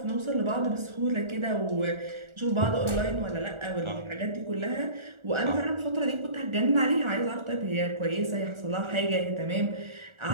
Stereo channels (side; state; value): left; late; 1.4 ms